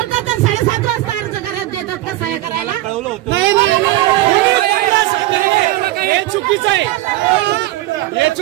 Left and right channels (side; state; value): left; quieter; 16.6 dB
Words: तर 7:30 वाजता अर्ज करायला देतात का सह्या करायला? नाही हे चुकीचं आहे. हे